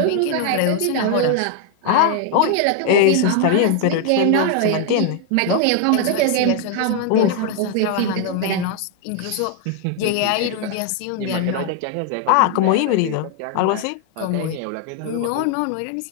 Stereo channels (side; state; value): both; different; correlation 0.00